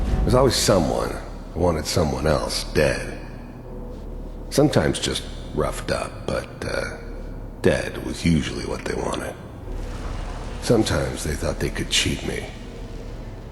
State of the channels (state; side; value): identical; both; correlation 1.00